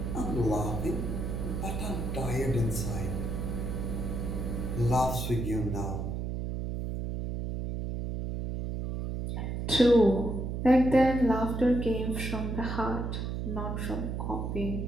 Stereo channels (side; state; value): right; noise; hum, 3 dB below the sound